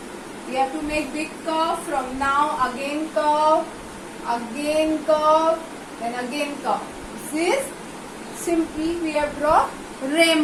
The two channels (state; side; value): identical; both; correlation 1.00